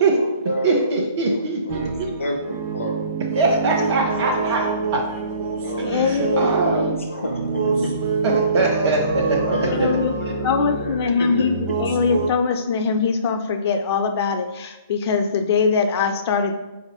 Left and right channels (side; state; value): both; inverted; correlation -0.50